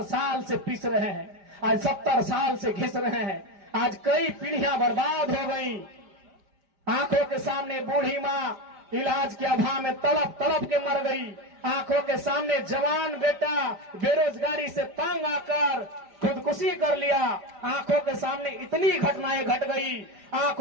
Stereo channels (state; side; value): late; left; 5.0 ms